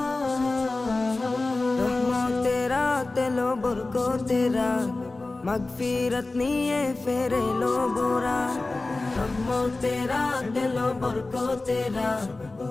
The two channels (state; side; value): quieter; right; 3.2 dB